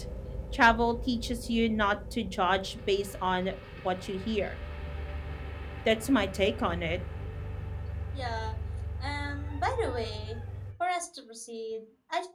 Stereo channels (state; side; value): identical; both; correlation 1.00